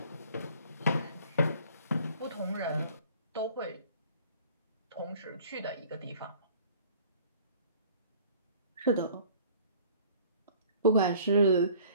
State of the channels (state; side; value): inverted; both; correlation -0.52